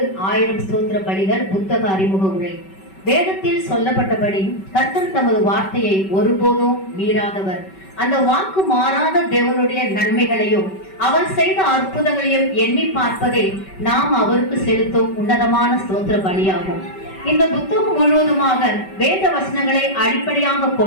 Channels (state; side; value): late; right; 5.2 ms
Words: 1000 ஸ்தோத்திர பலிகள் புத்தக அறிமுக உரை. வேதத்தில் சொல்லப்பட்டபடி கர்த்தர் தமது வார்த்தையை ஒருபோதும் மீறாதவர். அந்த வாக்கு மாறாத தேவனுடைய நன்மைகளையும் அவர் செய்த அற்புதங்களையும் எண்ணி பார்ப்பதே நாம் அவருக்கு செலுத்தும் உன்னதமான ஸ்தோத்திர பலியாகும். இந்த புத்தகம் முழுவதுமாக வேத வசனங்களை அடிப்படையாக